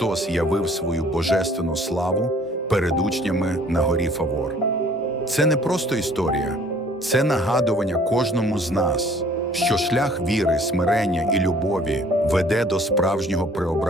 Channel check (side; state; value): both; normal; correlation 0.56